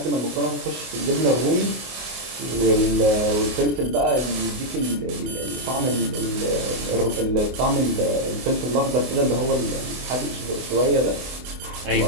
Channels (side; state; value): left; late; 24 ms